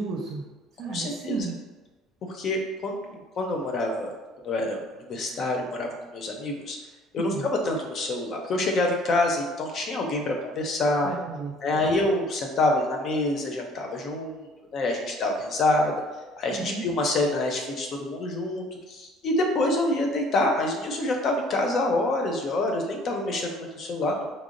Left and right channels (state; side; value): normal; both; correlation 0.55